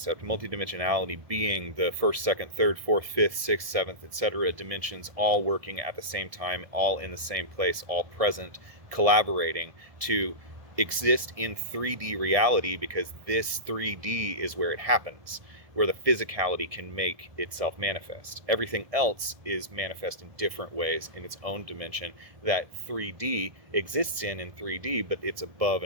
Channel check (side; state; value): left; late; 1.6 ms